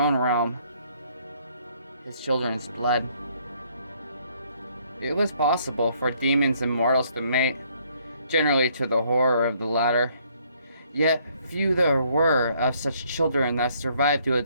realm. His children's blood. It was possible for demons and mortals to mate, generally to the horror of the latter. Yet few there were of such children that survived to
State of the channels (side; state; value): both; inverted; correlation -0.66